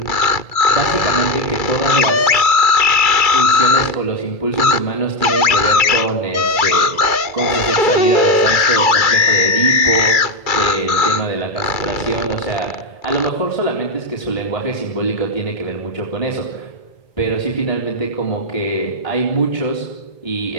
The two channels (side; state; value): right; late; 2.3 ms